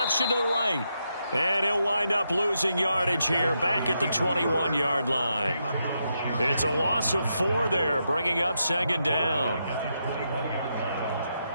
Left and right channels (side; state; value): both; inverted; correlation -0.82